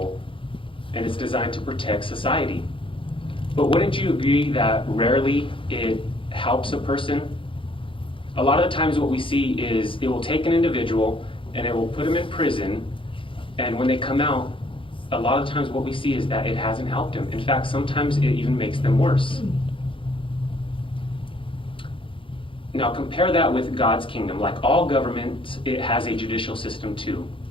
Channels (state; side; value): late; right; 0.25 ms